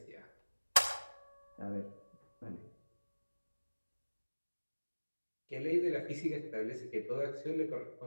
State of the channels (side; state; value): both; inverted; correlation -1.00